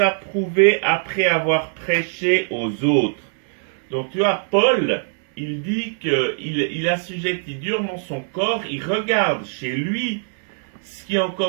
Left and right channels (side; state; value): left; silent; 63 dB below the other